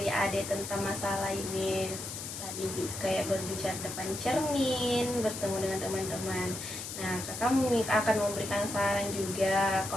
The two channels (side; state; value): left; noise; hiss, 7 dB below the sound